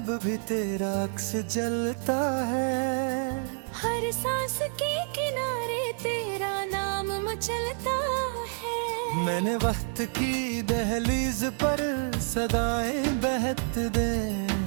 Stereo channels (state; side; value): silent; left; 56 dB below the other